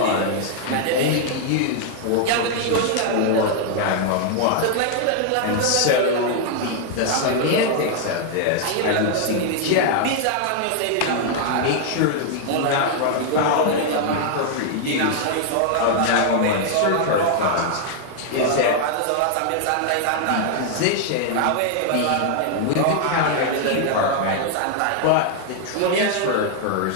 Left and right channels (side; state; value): both; different; correlation 0.00